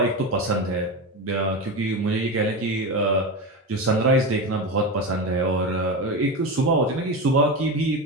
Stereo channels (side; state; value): both; normal; correlation 0.20